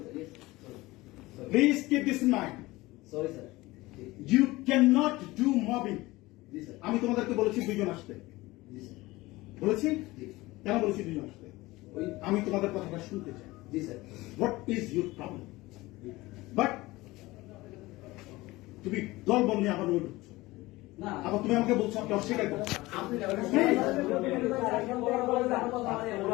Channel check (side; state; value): right; quieter; 20.0 dB